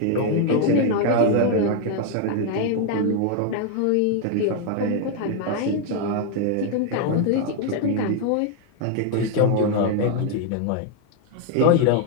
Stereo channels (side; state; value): both; different; correlation 0.00